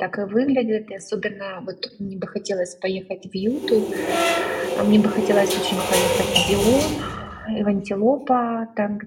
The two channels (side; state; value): both; identical; correlation 1.00